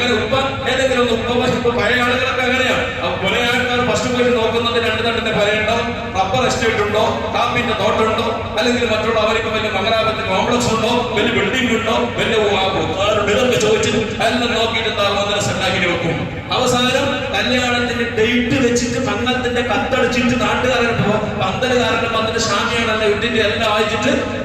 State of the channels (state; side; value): identical; both; correlation 1.00